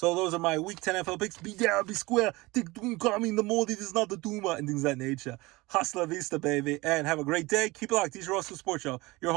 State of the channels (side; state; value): left; quieter; 22.1 dB